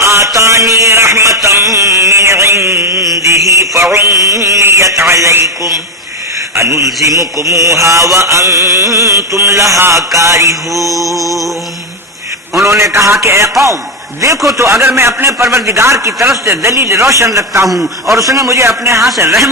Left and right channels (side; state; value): both; normal; correlation 0.10